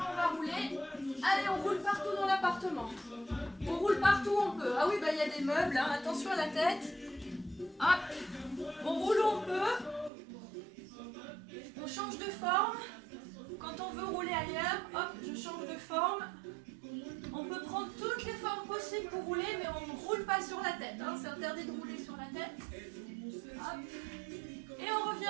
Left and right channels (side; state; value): left; drops out; at 10.1 s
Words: on va rouler. Allez, on roule partout dans l'appartement. On roule partout où on peut. Ah oui, bah il y a des meubles, hein. Attention à la tête. Hop. On roule où on peut. On change de forme. Quand on veut rouler ailleurs, hop. change de forme. On peut prendre toutes les formes possibles pour rouler, mais on ne roule pas sur la tête. Hein. C'est interdit de rouler sur la tête. Hop. Et on